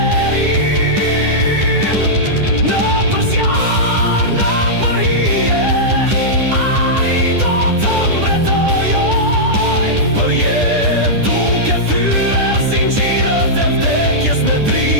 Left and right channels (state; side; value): late; left; 10 ms